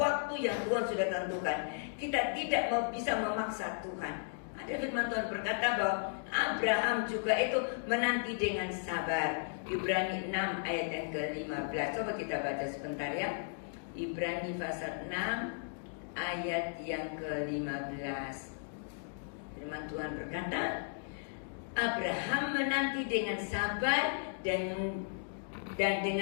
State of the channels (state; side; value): silent; right; digital silence